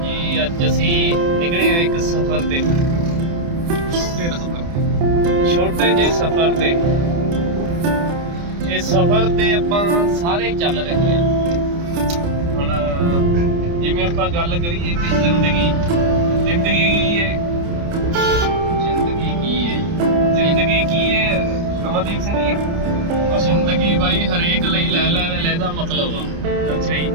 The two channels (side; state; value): left; late; 29 ms